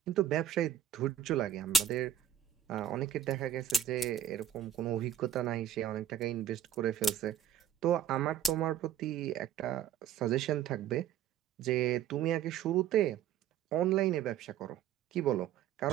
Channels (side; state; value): left; quieter; 10.0 dB